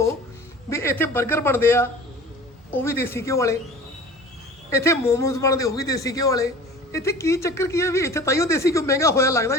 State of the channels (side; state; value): both; normal; correlation 0.42